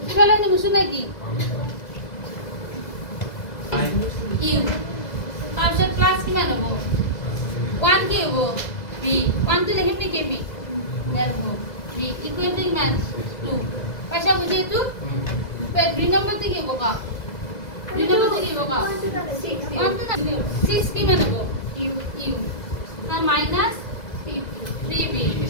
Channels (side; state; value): right; late; 2.0 ms